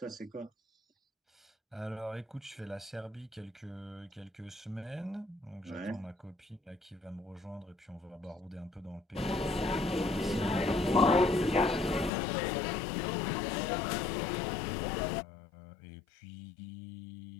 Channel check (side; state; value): right; drops out; at 12.1 s